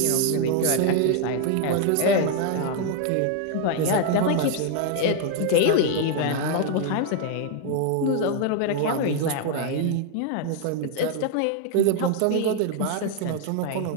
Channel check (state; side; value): different; both; correlation 0.00